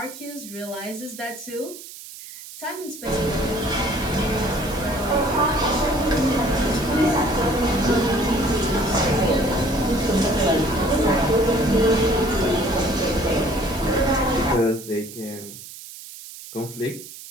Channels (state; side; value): noise; right; hiss, 15 dB below the sound